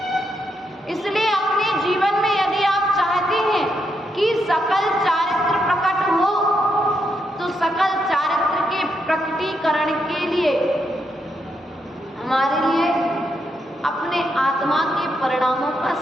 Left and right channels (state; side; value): normal; both; correlation 0.80